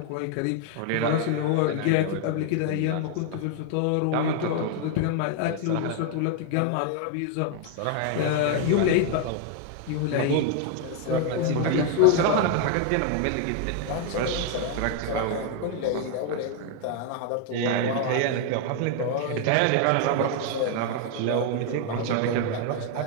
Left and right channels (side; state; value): both; different; correlation 0.00